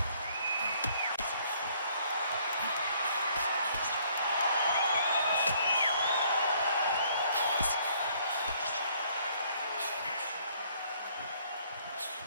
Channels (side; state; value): both; inverted; correlation -0.63